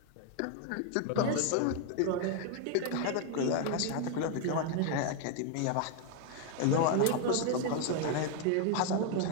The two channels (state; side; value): different; both; correlation 0.01